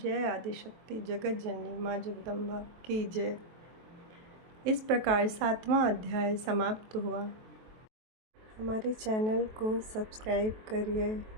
आदिशक्ति जगत जननी माँ जगदम्बा की जय। इस प्रकार 7वां अध्याय समाप्त हुआ। हमारे चैनल को सब्सक्राइब करिए,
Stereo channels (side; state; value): left; late; 23 ms